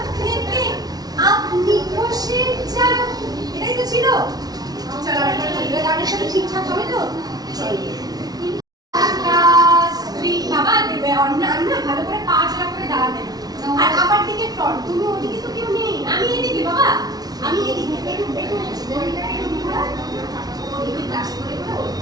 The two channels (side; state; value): left; late; 0.19 ms